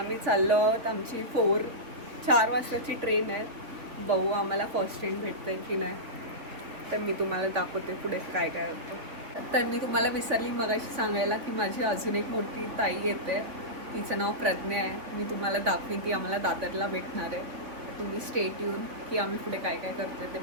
चाललो आहोत. आमची 4 वाजताची ट्रेन आहे. बघू आम्हाला फर्स्ट ट्रेन भेटते की नाही, तर मी तुम्हाला दाखवते पुढे काय काय होतं. तर मी तुम्हाला विसरली मगाशी सांगायला की माझी अजून एक मोठी ताई येते, तिचं नाव प्रज्ञा आहे. मी तुम्हाला दाखवीन, ती आम्हाला दादरला भेटणार आहे. तुम्ही स्टेट येऊन की आम्ही पुढे काय काय करतोय ते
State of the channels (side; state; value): left; late; 3.5 ms